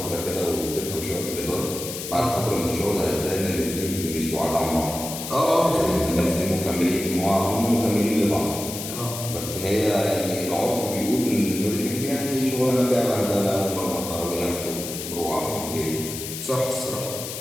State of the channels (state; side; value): noise; left; hiss, 7 dB below the sound